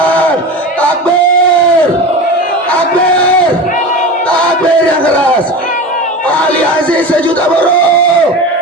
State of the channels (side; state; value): both; normal; correlation 0.29